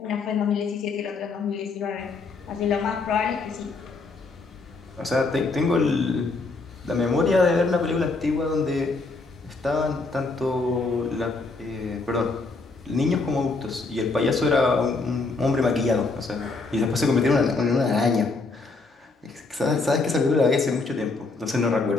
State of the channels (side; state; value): right; quieter; 3.7 dB